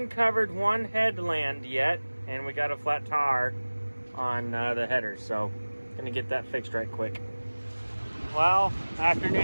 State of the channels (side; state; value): both; inverted; correlation -1.00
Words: covered one headland yet, and we got a flat tire on the header, so gonna get that fixed right quick. Well,